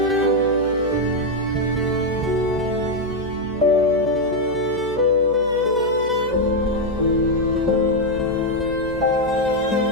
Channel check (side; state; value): right; noise; hum, 16 dB below the sound